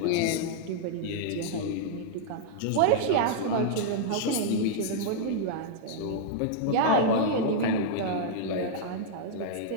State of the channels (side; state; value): both; different; correlation -0.01